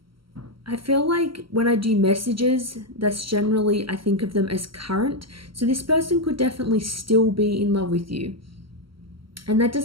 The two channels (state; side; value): late; left; 0.74 ms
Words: I feel like when I do messages, that's generally, I think of them as current. So this person could definitely still be in love with you. And that